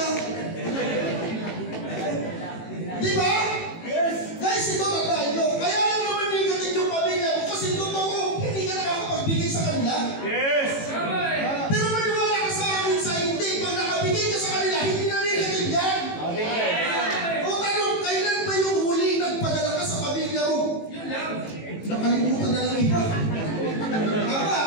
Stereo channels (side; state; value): right; late; 18 ms